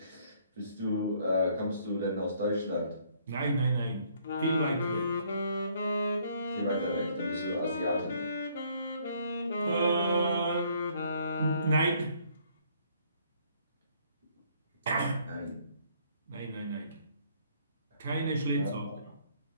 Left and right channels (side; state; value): both; inverted; correlation -0.64